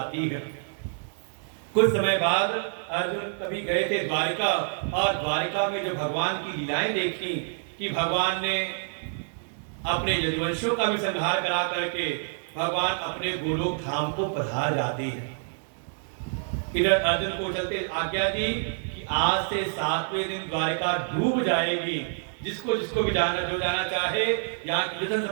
है। कुछ समय बाद अर्जुन कभी गए थे द्वारिका, और द्वारिका में जो भगवान की लीलाएं देखी कि भगवान ने अपने यदुवंशियों का भी संहार करा करके भगवान अपने गोलोक धाम को पधार जाते हैं। इधर अर्जुन को चलते आज्ञा दी कि आज से 7वें दिन द्वारिका डूब जाएगी। जिसको जिसको भी जाना, जो जाना चाहे, यहाँ की धन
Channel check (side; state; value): left; silent; digital silence